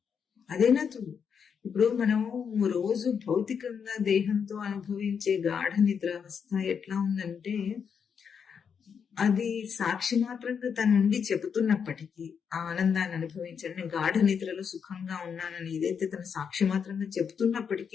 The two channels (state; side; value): quieter; right; 6.8 dB